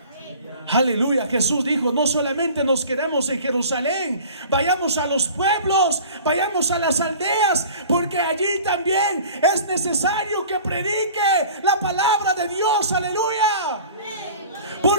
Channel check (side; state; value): both; inverted; correlation -0.43